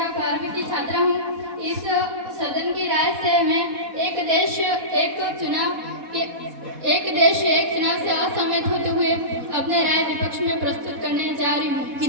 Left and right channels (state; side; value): late; left; 4.1 ms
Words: 12वीं की छात्रा हूँ। इस सदन की राय से मैं एक देश एक चुनाव से असहमत होते हुए अपने राय विपक्ष में प्रस्तुत करने जा रही हूँ।